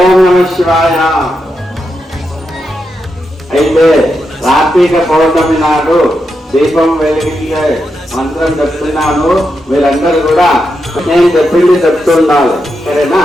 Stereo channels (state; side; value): normal; both; correlation 0.85